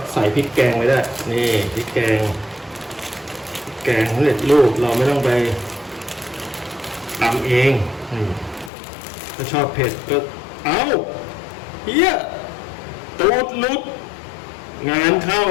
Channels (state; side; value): drops out; right; at 8.7 s